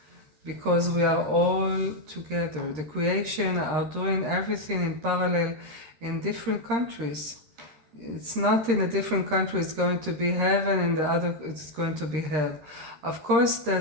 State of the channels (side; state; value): left; late; 13 ms